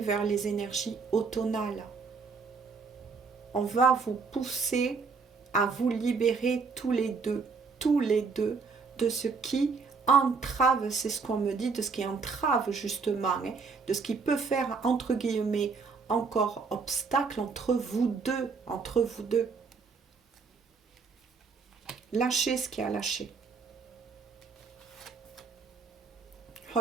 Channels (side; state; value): left; quieter; 4.9 dB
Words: vers les énergies automnales. On va vous pousser à vous libérer tous les deux, de ce qui entrave, c'est ce qu'on me dit, de ce qui entrave justement, hein, de ce qui peut faire, entre guillemets, encore obstacle entre vous deux. Lâchez ce qui a lâché.